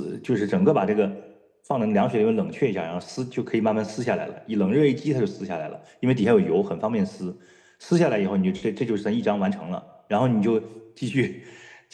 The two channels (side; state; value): both; identical; correlation 1.00